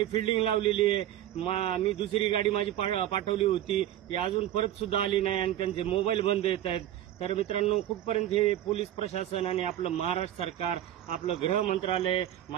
फिल्डिंग लावलेली आहे. मी दुसरी गाडी माझी पाठवली होती, ती अजून परत सुद्धा आली नाही आणि त्यांचे मोबाईल बंद येत आहेत. तर मित्रांनो, कुठपर्यंत हे पोलीस प्रशासन आणि आपलं महाराष्ट्र सरकार, आपलं गृह मंत्रालय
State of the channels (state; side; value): quieter; left; 12.3 dB